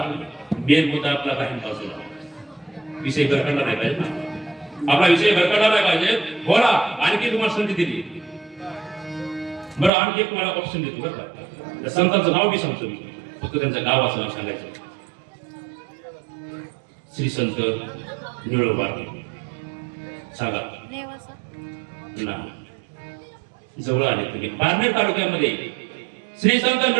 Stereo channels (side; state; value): left; drops out; at 9.9 s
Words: मेन मुद्दा आपला काही बाजूला विषय भरकडला नाही पाहिजे ना आपला विषय भरकडला नाही पाहिजे बोला आणखी तुम्हाला संधी दिली बरं आणखी एक तुम्हाला ऑप्शन देतो बरं का त्या संतांचं नाव बी सांगतो मी फक्त त्यांचं गावाचं नाव सांगायचं श्री संत निळोबा सांगा ना जवळ आले तुम्ही पारनेर तालुक्यामध्ये श्री संत